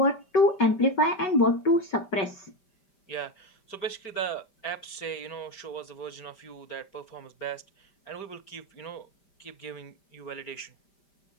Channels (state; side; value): late; right; 5.1 ms